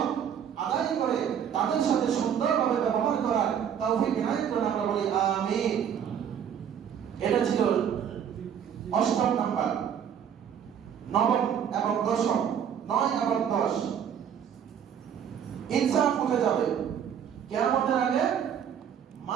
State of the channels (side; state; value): left; quieter; 8.5 dB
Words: আদায় করে তাদের সাথে সুন্দরভাবে ব্যবহার করার তৌফিক ইনায়াত করেন, আমরা বলি আমিন। এটা ছিল ৮ম নাম্বার। ৯ম এবং ১০ম, ৯ এবং ১০ ইনসাফ উঠে যাবে। কিয়ামতের আগে